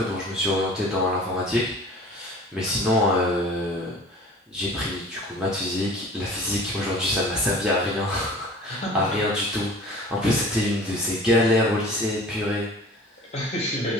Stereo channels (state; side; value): normal; both; correlation 0.44